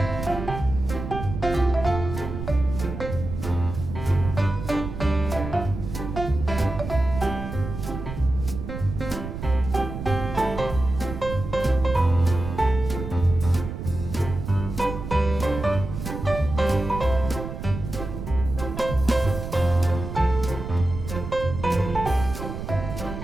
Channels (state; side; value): noise; right; rumble, 7 dB below the sound